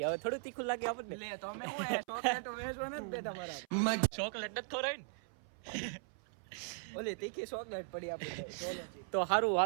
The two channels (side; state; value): left; silent; 52 dB below the other